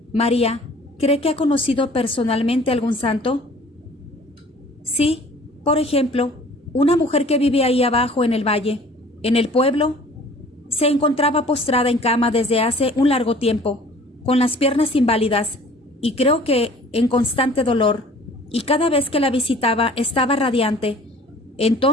María, ¿cree que ha conocido personalmente algún santo? Sí, por ejemplo, una mujer que vive ahí abajo en el valle, en el pueblo, se encontraba postrada en cama desde hace un largo tiempo, con las piernas inválidas, y creo que en constante dolor, y cada vez que la visitaba estaba radiante.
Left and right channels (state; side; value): normal; both; correlation 0.50